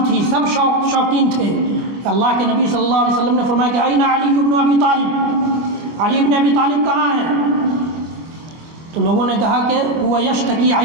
تھی، سب شوقین تھے۔ اللہ کے نبی صلی اللہ علیہ وسلم نے فرمایا کہ اين علی بن ابی طالب، علی بن ابی طالب کہاں ہیں؟ تو لوگوں نے کہا کہ وہ یشتکی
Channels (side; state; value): left; late; 24 ms